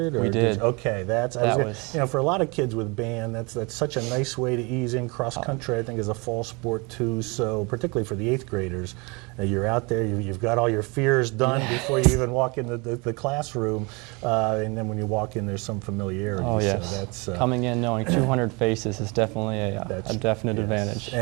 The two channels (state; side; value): quieter; left; 28.8 dB